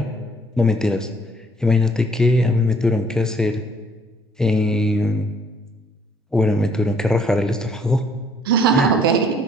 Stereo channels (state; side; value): normal; both; correlation 0.62